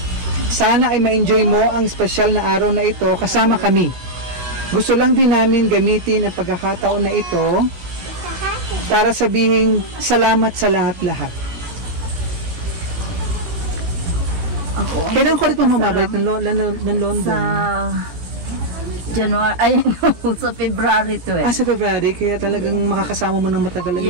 Sana ay ma-enjoy mo ang espesyal na araw na ito kasama kami. Gusto lang din namin gamitin ang pagkakataon na ito para sabihin salamat sa lahat-lahat. Ako, Kailan ko rin mamabalik ng London? sa January, ay no, sa February to eh. Sa February, kaya talagang makakasama mo ng matagal ang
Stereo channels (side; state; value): left; late; 17 ms